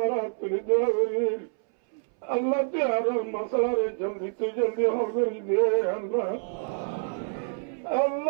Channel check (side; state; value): left; silent; 60 dB below the other